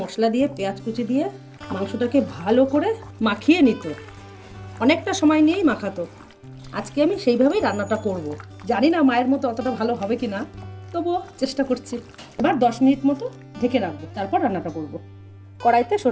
মশলা দিয়ে পেঁয়াজ কুচি দিয়ে মাংসটাকে ভালো করে মাখিয়ে নিত, অনেকটা সময় নিয়েই মাখাতো। আজকে আমি সেইভাবেই রান্নাটা করব। জানি না মায়ের মতো অতটা ভালো হবে কি না, তবুও চেষ্টা করছি। এবার 10 মিনিট মতো ঢেকে রাখবো, তারপর রান্নাটা করব। কড়াইতে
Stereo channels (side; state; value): both; identical; correlation 1.00